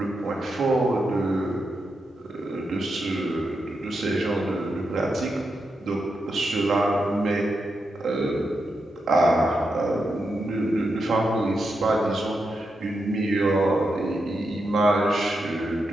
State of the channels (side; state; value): both; normal; correlation 0.85